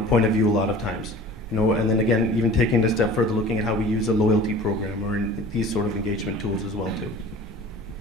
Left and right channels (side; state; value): both; normal; correlation 0.42